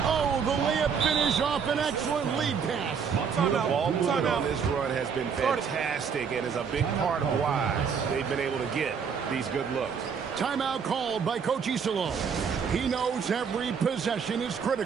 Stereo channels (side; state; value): left; quieter; 6.5 dB